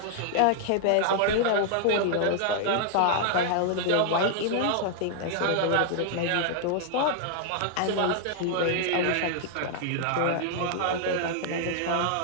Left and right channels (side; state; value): both; different; correlation -0.01